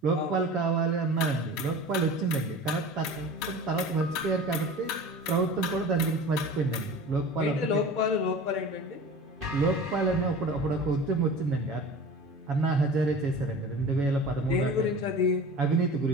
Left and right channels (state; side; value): normal; both; correlation 0.37